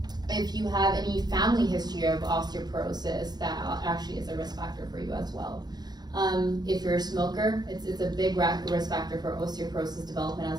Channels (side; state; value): left; late; 0.20 ms